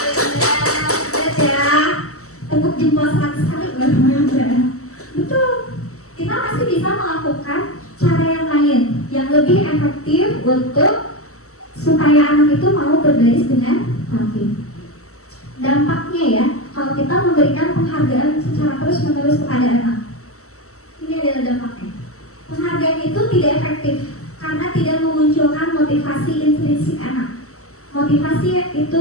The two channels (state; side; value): late; right; 0.64 ms